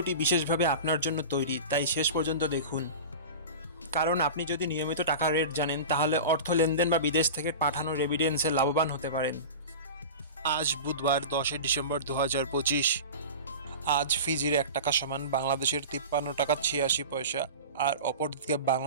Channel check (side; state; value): both; inverted; correlation -0.31